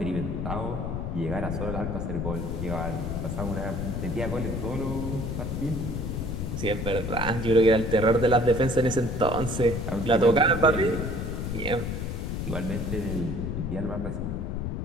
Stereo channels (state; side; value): noise; left; rumble, 3 dB below the sound